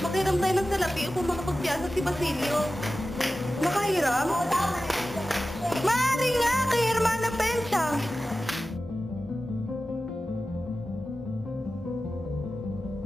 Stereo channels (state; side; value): normal; both; correlation 0.94